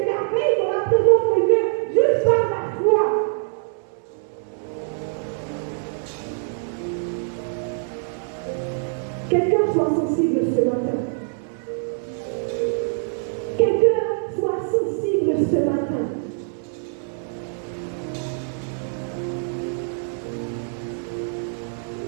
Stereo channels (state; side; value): silent; left; 58 dB below the other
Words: merveilles dans la présence de Dieu juste par la foi. Quelqu'un soit sensible ce matin. Quelqu'un soit sensible ce matin.